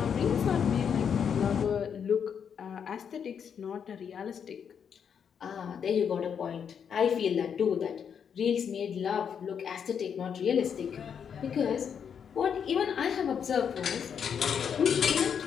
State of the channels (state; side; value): quieter; right; 7.5 dB